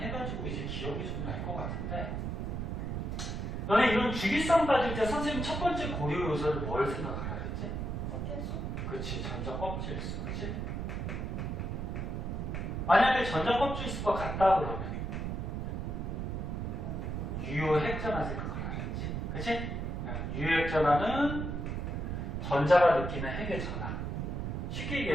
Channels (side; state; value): right; noise; rumble, 3 dB below the sound